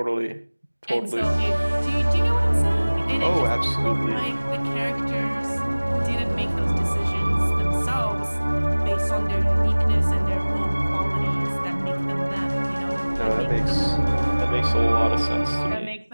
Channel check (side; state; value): both; inverted; correlation -1.00